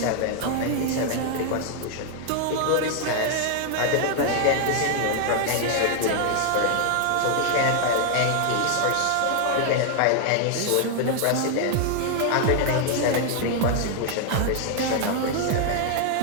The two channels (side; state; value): both; different; correlation 0.00